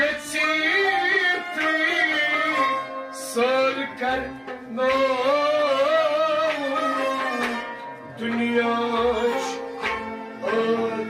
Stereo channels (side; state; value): both; identical; correlation 1.00